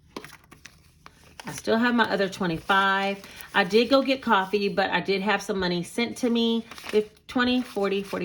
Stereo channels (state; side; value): identical; both; correlation 1.00